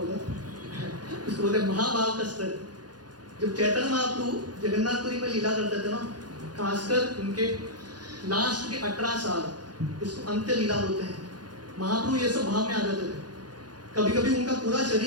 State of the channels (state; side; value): late; left; 0.69 ms